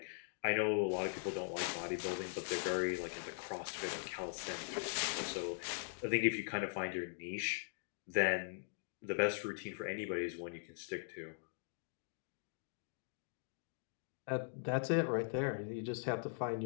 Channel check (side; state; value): right; silent; digital silence